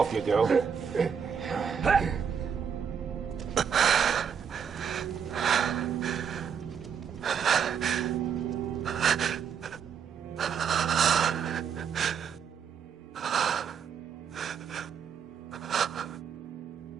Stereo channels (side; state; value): left; quieter; 7.3 dB